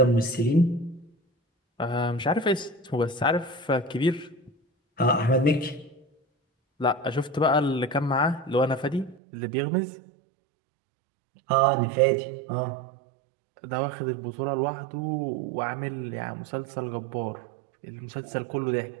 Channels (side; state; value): left; drops out; at 9.2 s